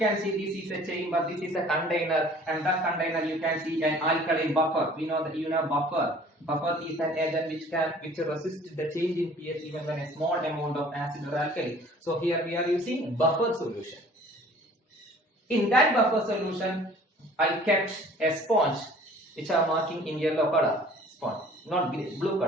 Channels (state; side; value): normal; both; correlation 0.51